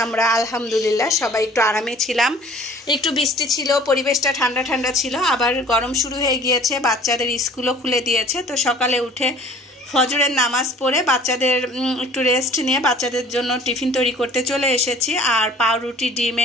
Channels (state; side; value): normal; both; correlation 0.49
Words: আমরা আলহামদুলিল্লাহ সবাই একটু আরামে ছিলাম, একটু বৃষ্টি ছিল, পরিবেশটা ঠান্ডা ঠান্ডা ছিল। আবার গরম শুরু হয়ে গিয়েছে, বাচ্চাদের স্কুলও খুলে দিয়েছে। তো সকালে উঠে ফজরের নামাজ পড়ে বাচ্চাদের একটু রেস্ট নিয়ে বাচ্চাদের জন্য টিফিন তৈরি করতে চলে এসেছি। আর পাউরুটি